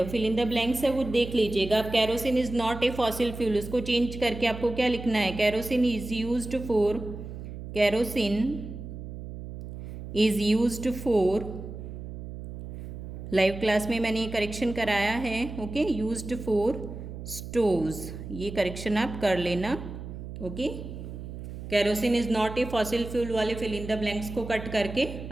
फिल इन द ब्लैंक्स है वो देख लीजिएगा आप. Kerosene is not a fossil fuel, उसको चेंज करके आपको क्या लिखना है, kerosene is used for, kerosene is used for, live class में मैंने ये करेक्शन कराया है. ओके, यूज्ड फॉर स्टोव्स, ये करेक्शन आप कर लेना. Okay, kerosene is not a fossil fuel वाले फिल इन द ब्लैंक्स को कट करके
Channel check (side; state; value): right; noise; hum, 10 dB below the sound